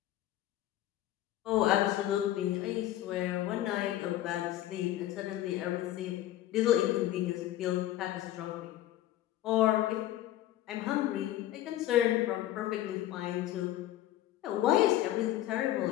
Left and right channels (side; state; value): right; quieter; 13.7 dB